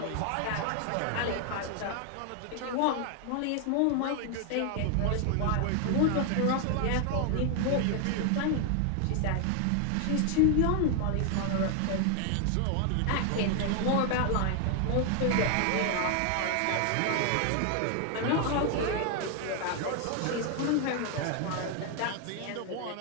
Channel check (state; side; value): different; both; correlation 0.01